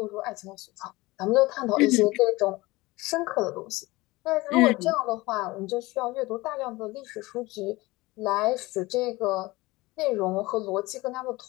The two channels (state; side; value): quieter; right; 21.0 dB